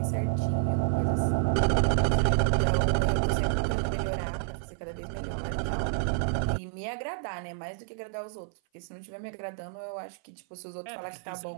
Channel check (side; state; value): left; silent; 56 dB below the other